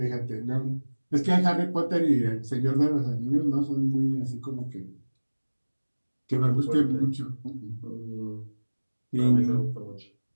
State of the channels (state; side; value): inverted; both; correlation -1.00